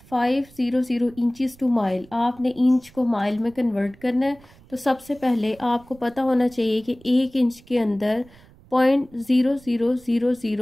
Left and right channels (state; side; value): noise; right; rumble, 25 dB below the sound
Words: इंचज़ टू माइल। आपने इंच को माइल में कन्वर्ट करना है, तो सबसे पहले आपको पता होना चाहिए कि 1 इंच के अंदर